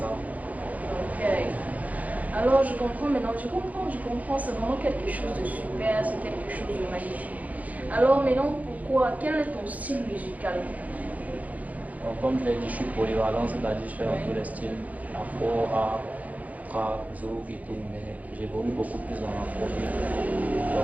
ça. Ok. Alors je comprends maintenant, je comprends, c'est vraiment quelque chose de super, c'est quelque chose de magnifique. Alors maintenant, pourquoi, quel est ton style musical? Donc, comme je l'ai dit, je suis polyvalent, c'est-à-dire je fais dans tous les styles, afro, rap, trap, zouk et tout, mais j'évolue beaucoup plus dans l'afrobeat.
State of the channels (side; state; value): left; late; 0.075 ms